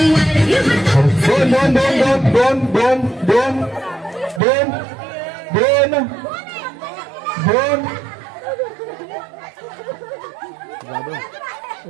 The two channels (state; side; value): drops out; left; at 4.4 s